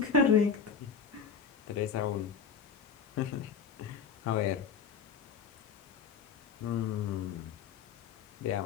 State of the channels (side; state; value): right; quieter; 6.3 dB